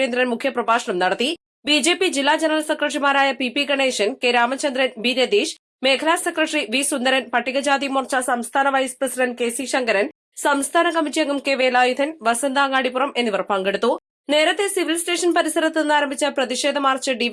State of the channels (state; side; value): identical; both; correlation 1.00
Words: മുഖ്യപ്രഭാഷണം നടത്തി. ബി.ജെ.പി. ജില്ലാ ജനറൽ സെക്രട്ടറിമാരായ P. Ganesan, K. Ramachandran, B. Ratheesh, മേഖലാ സെക്രട്ടറി വി. സുന്ദരൻ, പട്ടികജാതി മോർച്ച സംസ്ഥാന vice president K. C. Sankaran, സംസ്ഥാന കമ്മിറ്റി അംഗം കെ. വേലായുധൻ, വസന്ത അങ്ങാടിപ്പുറം എന്നിവർ പങ്കെടുത്തു. നേരത്തെ സിവിൽ സ്റ്റേഷൻ പരിസരത്ത് നിന്ന് ആരംഭിച്ച പ്രതിഷേധ മാർച്ച്